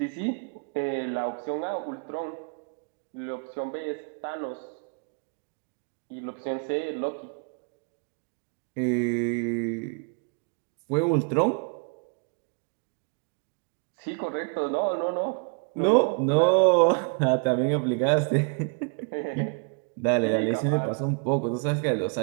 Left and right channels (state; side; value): quieter; left; 39.0 dB